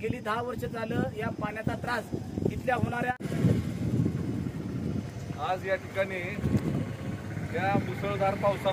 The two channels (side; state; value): both; identical; correlation 1.00